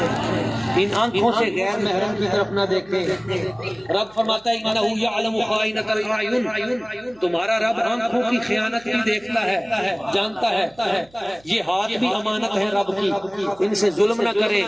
ان آنکھوں سے غیر محرم کی طرف نہ دیکھیں. رب فرماتا ہے انہ یعلم خائنۃ الاعین، تمہارا رب آنکھوں کی خیانت بھی دیکھتا ہے، جانتا ہے. یہ ہاتھ بھی امانت ہے رب کی، ان سے ظلم نہ کریں.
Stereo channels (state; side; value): noise; right; hum, 29 dB below the sound